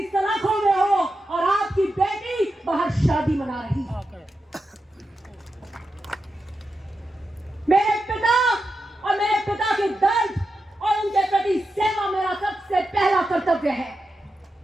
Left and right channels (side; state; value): both; normal; correlation 0.89